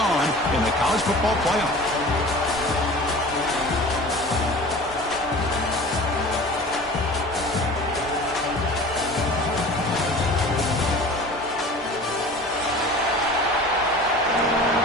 in the college football playoff.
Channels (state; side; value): normal; both; correlation 0.40